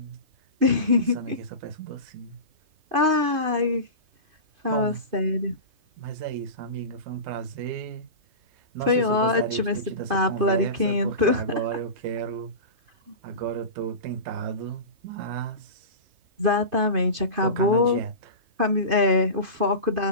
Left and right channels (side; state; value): left; late; 2.5 ms